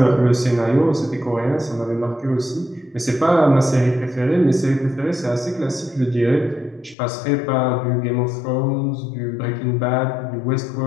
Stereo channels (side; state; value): right; drops out; at 7.0 s